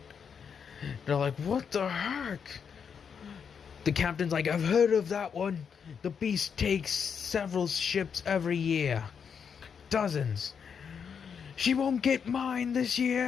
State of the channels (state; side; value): quieter; right; 6.8 dB